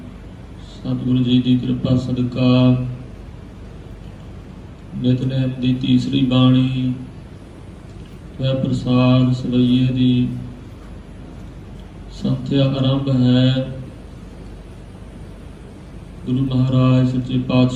ਸਤਿਗੁਰੂ ਜੀ ਦੀ ਕਿਰਪਾ ਸਦਕਾ ਨਿਤਨੇਮ ਦੀ ਤੀਸਰੀ ਬਾਣੀ ਵੈ ਪ੍ਰਸਾਦ ਸਵਈਏ ਦੀ ਸੰਥਿਆ ਆਰੰਭ ਹੈ। ਗੁਰੂ ਮਹਾਰਾਜ ਸੱਚੇ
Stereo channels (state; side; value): identical; both; correlation 1.00